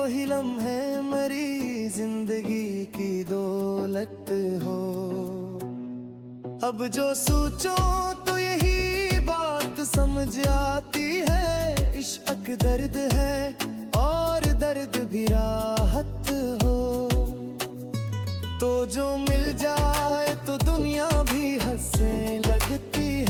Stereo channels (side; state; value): both; identical; correlation 1.00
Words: लम्हे मेरी जिंदगी की दौलत हो। अब जो सोचो तो यही बात समझ आती है, इश्क दर्द है और दर्द भी राहत हो। तो जो मिल जाए तो दुनिया भी हंसने लगती